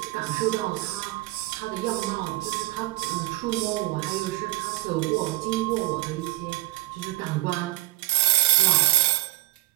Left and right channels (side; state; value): left; quieter; 17.5 dB